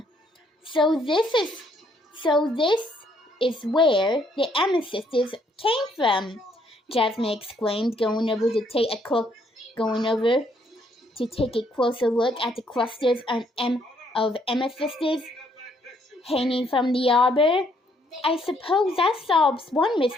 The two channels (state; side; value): normal; both; correlation 0.69